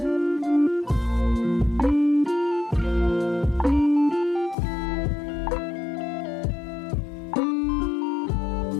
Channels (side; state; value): right; drops out; at 4.5 s